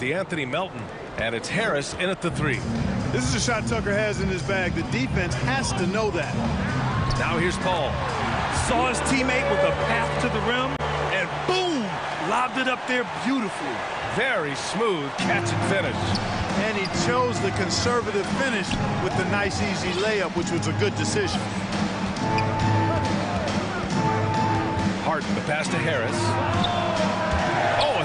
Melton. And it's Harris in at the 3. This is a shot Tucker has in his bag. The defense has to know that. Now here's Paul. Saw his teammate with a path to the rim, and boom! Lobbed it up there beautifully. Very smooth catch and finish. And he chose the conservative finish with the nice, easy layup, which was a good decision. Harden, the pass to Harris. Oh,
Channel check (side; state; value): both; identical; correlation 1.00